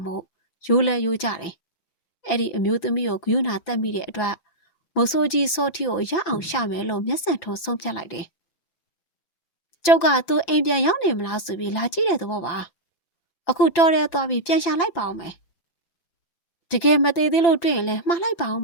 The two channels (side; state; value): right; late; 5.9 ms